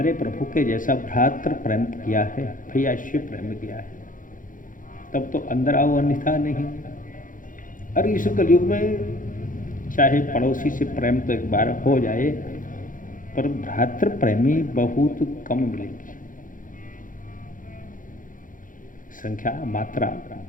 प्रभु के जैसा भ्रातृ प्रेम किया है, भैया शिव प्रेम किया है, तब तो अंदर आओ, अन्यथा नहीं। और इस कलयुग में चाहे पड़ोसी से प्रेम तो एक बार हो जाए, पर भ्रातृ प्रेमी बहुत कम मिलेंगे। संख्या मात्रा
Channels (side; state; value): right; late; 0.39 ms